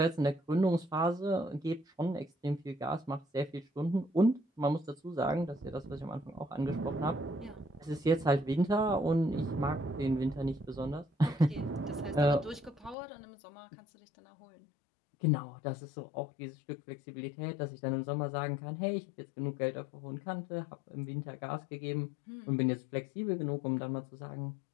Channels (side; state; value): right; drops out; at 13.0 s